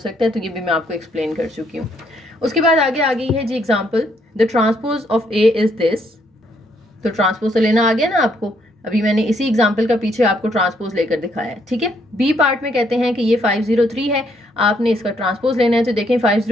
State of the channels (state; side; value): normal; both; correlation 0.71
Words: है, तो ये भी मैं आपको एक्सप्लेन कर चुकी हूँ। उसके बाद आगे आ गई है जी example, the transpose of A is this. तो ट्रांसपोज तो लेना आ गया ना आपको, अभी मैंने इसी एग्जाम्पल का पीछे आपको ट्रांसपोज लेकर दिखाया है। ठीक है, बी पार्ट में कहते हैं कि ये 503 है, आपने इसका ट्रांसपोज लेना है। तो देखें